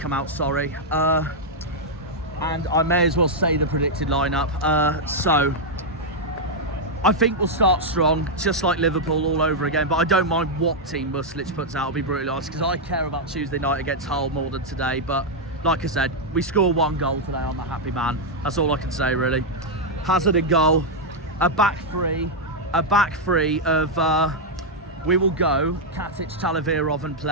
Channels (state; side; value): normal; both; correlation -0.03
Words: out. Sorry. And I may as well say the predicted lineup. So I think we'll start strong, just like Liverpool all over again, but I don't mind what team Muslich puts out, I'll be brutally honest, because I care about Tuesday night against Hull more than today. But like I said, we score 1 goal today, I'm a happy man. That's all I can say, really. Hazard in goal, a back three of, we will go Katic, Talavirov and